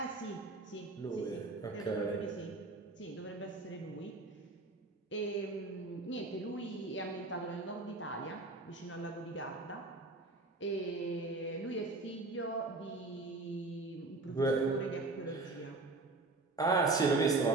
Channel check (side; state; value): left; quieter; 3.3 dB